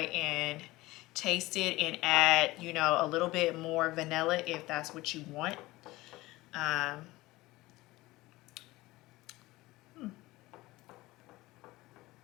and taste it and add, you know, a little bit more vanilla if that's what you want.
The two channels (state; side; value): quieter; right; 19.4 dB